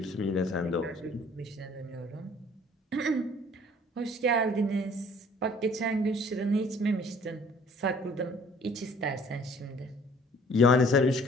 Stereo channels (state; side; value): normal; both; correlation 0.55